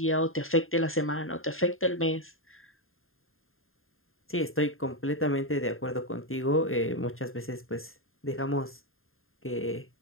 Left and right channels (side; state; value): right; late; 0.61 ms